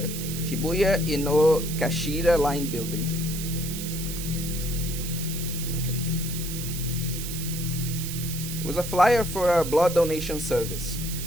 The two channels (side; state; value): right; noise; hiss, 7 dB below the sound